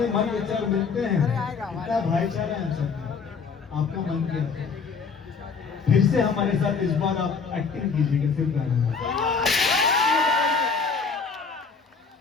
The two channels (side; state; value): right; quieter; 5.2 dB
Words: मन विचार मिलते हैं, इतना भाईचारा है हम सब। आपका मन क्या है? फिर से हमारे साथ इस बार आप एक्टिंग कीजिएगा सिर्फ गाने में।